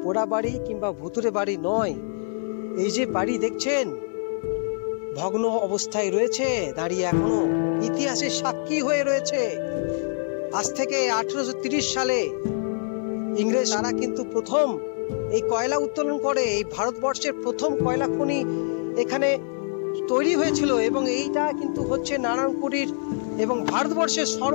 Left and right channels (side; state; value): right; silent; digital silence